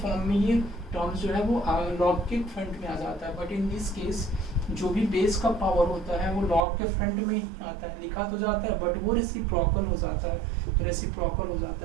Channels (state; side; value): drops out; left; at 6.7 s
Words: में ये टर्म्स जो है वो लॉग के फ्रंट में आ जाता है, बट इन दिस केस जो भी बेस का पावर होता है वो लॉग के फ्रंट में ही आता है, लिखा तो जाता है बट वो रेसिप्रोकल हो जाता है, तो रेसिप्रोकल हो जाता